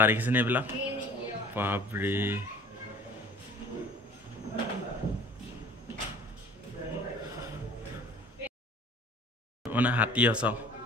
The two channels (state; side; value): normal; both; correlation 0.48